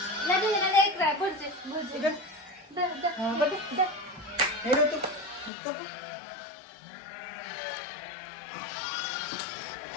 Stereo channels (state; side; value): drops out; right; at 5.5 s